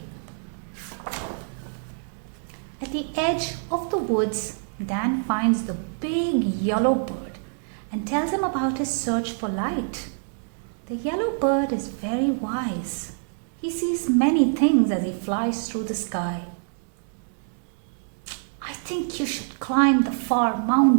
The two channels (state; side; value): silent; left; digital silence